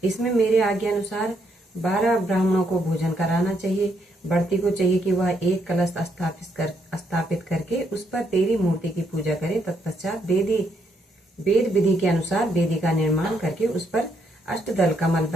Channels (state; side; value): normal; both; correlation 0.74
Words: इसमें मेरे आज्ञा अनुसार 12 ब्राह्मणों को भोजन कराना चाहिए। व्रती को चाहिए कि वह एक कलश स्थापित करके उस पर तेरी मूर्ति की पूजा करे। तत्पश्चात वेद विधि के अनुसार वेदी का निर्माण करके उस पर अष्टदल कमल